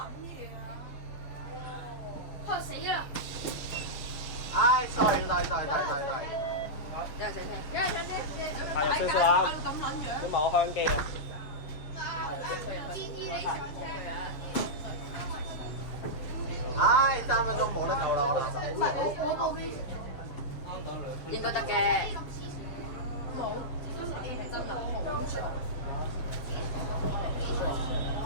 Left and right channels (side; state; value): right; late; 6.9 ms